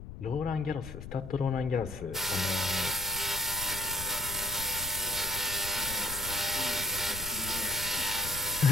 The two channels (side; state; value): left; noise; rumble, 11 dB below the sound